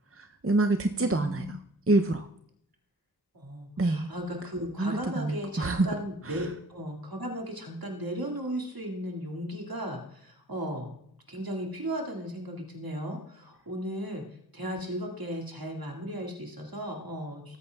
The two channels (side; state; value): both; normal; correlation 0.51